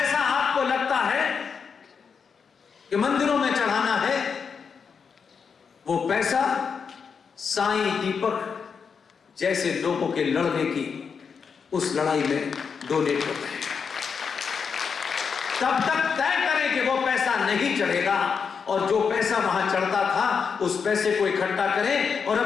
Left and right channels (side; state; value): right; quieter; 6.1 dB